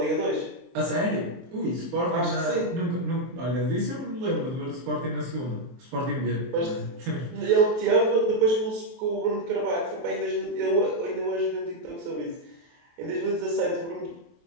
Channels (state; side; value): late; left; 23 ms